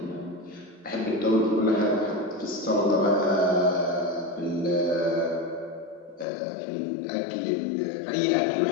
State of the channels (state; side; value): drops out; right; at 6.2 s